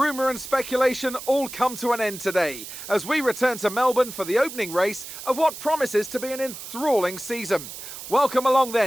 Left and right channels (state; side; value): noise; right; hiss, 11 dB below the sound